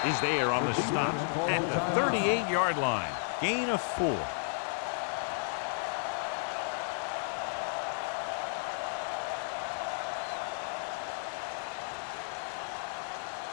is there on the stop at the 38-yard line. Gain of 4.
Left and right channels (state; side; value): silent; right; 56 dB below the other